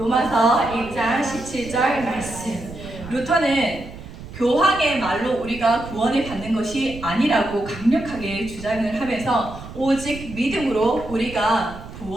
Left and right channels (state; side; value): noise; right; rumble, 14 dB below the sound